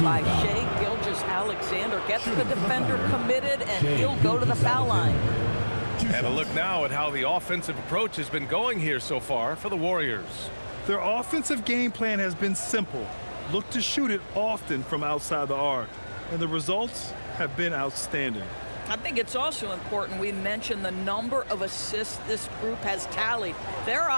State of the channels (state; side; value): inverted; both; correlation -1.00